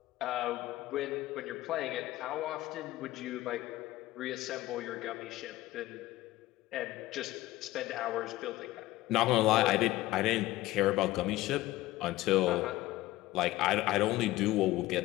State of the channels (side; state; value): right; quieter; 17.0 dB